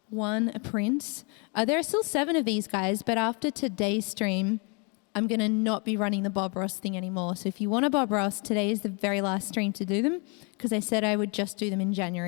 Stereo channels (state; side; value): quieter; right; 34.0 dB